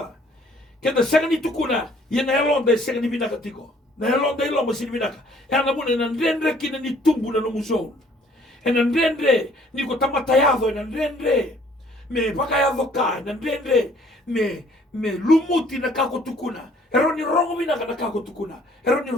Kenda senga ni tukuna, ye na elonda senga ni binaka tiko. Na elonda ilo mo sini binaka. E ana mune na ndendre kina ni tumbu na no musou. E na ndendre ni ko tamatayado, e na ndendre me pakayado ka, na ndendre me lumuti na kako tukuna. Ero ni rongo binaka na kako tukuna. Ero ni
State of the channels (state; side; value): normal; both; correlation 0.59